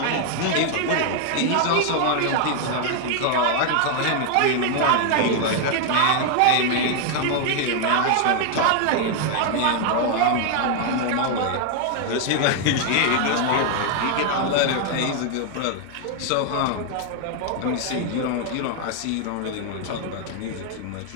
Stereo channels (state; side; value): different; both; correlation 0.00